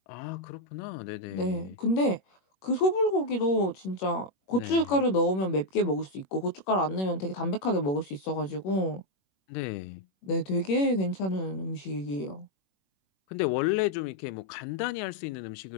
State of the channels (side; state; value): right; late; 21 ms